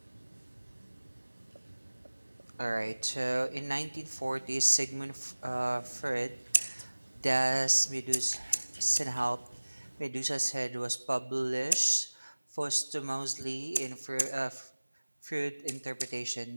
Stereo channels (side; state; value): both; inverted; correlation -1.00